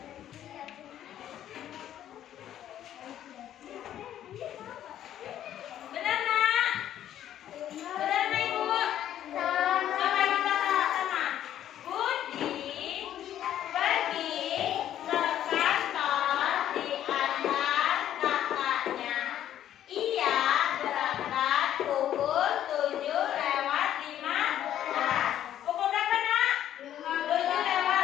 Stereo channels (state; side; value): quieter; right; 11.3 dB